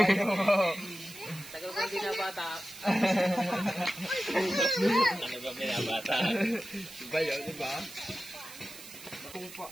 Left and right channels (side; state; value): right; noise; hiss, 15 dB below the sound